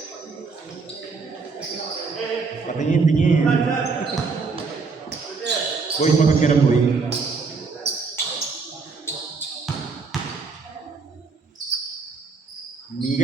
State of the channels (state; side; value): quieter; left; 4.7 dB